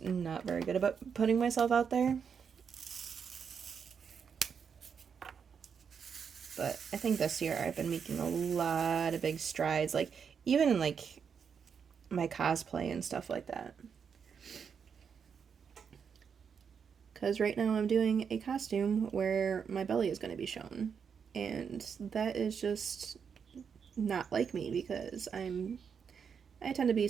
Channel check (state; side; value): quieter; left; 6.7 dB